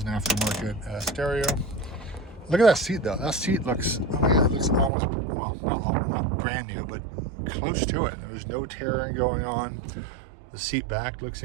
an aftermarket stereo. Look at that seat though. That seat looks, oh my God, it looks almost, well, not brand new, but close to it. There's no tearing going on. The seat back looks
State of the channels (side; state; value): left; drops out; at 4.9 s